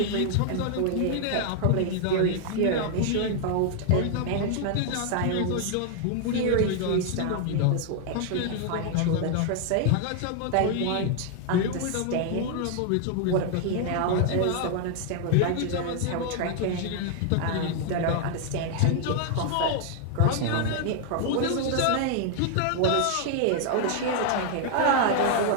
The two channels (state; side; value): different; both; correlation 0.00